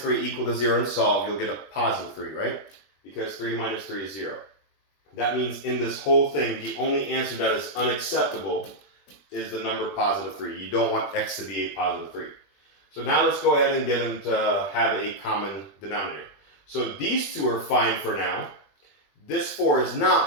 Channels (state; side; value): late; right; 20 ms